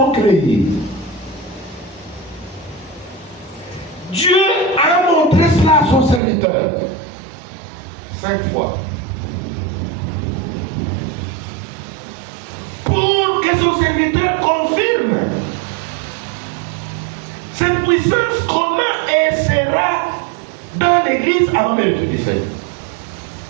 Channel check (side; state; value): left; drops out; at 6.2 s